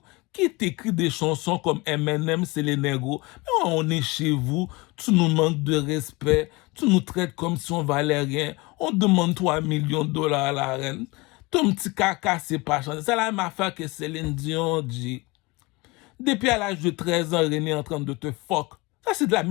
Qui t'écrit des chansons comme Eminem, c'est les négros. Mais on est chez vous, tu nous manques de respect, tu nous traites comme si on valait rien. On demande 3 millions de dollars à la reine. Ton petit caca, c'est pas changé. C'est la même affaire que Céline Dion dit. Depuis à l'âge de 13 ans, René est en train de te fuck. Ça, c'est de la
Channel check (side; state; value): right; quieter; 24.5 dB